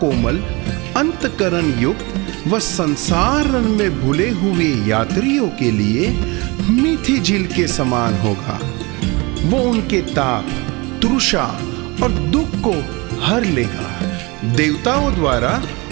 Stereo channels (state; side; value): quieter; left; 26.1 dB